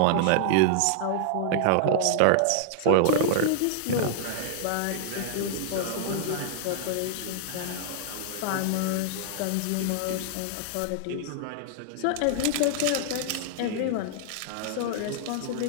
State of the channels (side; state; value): both; different; correlation -0.01